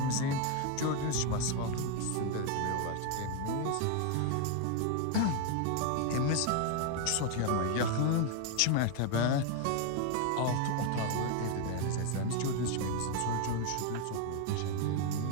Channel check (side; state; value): both; different; correlation 0.01